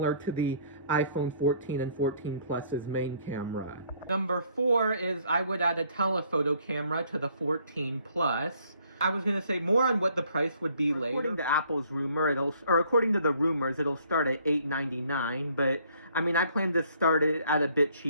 to the iPhone 14 and 14 Plus's main camera. Number four is I would add a telephoto camera to the 14 Plus. I was going to say more on what the price would be later. According to Apple's rumor, according to the rumors, it'll start at $899, but I mean, I plan to start it at a bit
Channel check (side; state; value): both; inverted; correlation -0.62